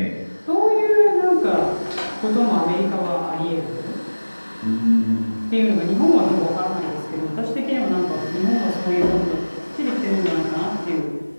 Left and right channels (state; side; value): inverted; both; correlation -1.00